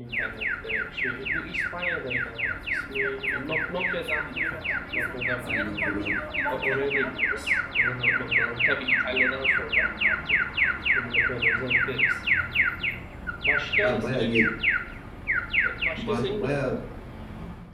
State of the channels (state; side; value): identical; both; correlation 1.00